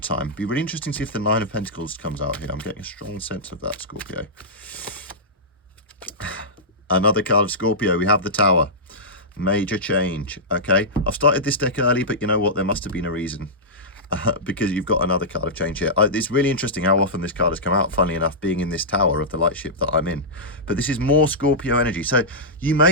It'd be really interesting to see if the Nine of Pentacles comes out here. I'm getting a strong sense of that, Scorpio. Another card of Scorpio, we have the Tower. Major change, okay? I've started this deck early, but you know what? There must have been a reason. Because you've got another card of change here. It's really interesting how often this card has come out, funnily enough, being in this Tower of the Lightship that I'm in. But this is more Scorpio energy. So you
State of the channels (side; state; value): both; normal; correlation -0.13